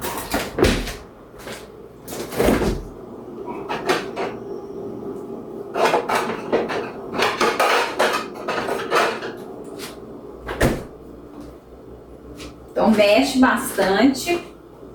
Então, mexe bastante.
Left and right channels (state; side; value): identical; both; correlation 1.00